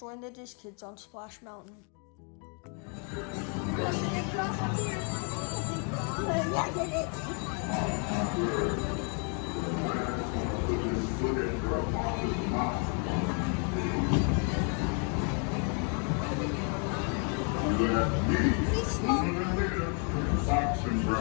the Diz Kids on Splash Mountain. Fox and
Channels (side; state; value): right; quieter; 39.2 dB